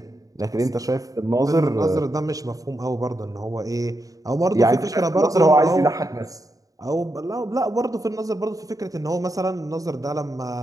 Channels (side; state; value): left; late; 0.17 ms